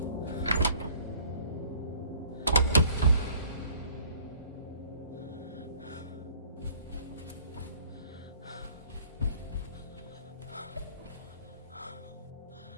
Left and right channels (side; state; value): both; inverted; correlation -0.55